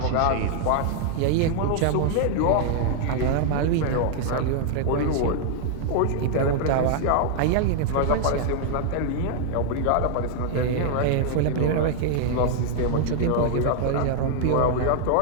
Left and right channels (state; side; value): different; both; correlation 0.00